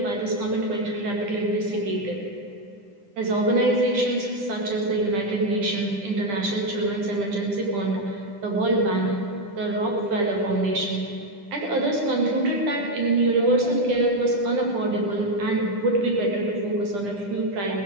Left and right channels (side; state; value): left; late; 10 ms